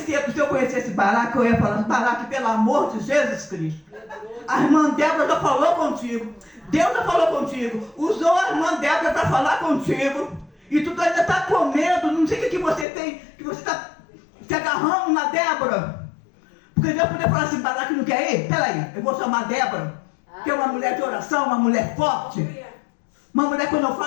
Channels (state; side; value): drops out; right; at 12.9 s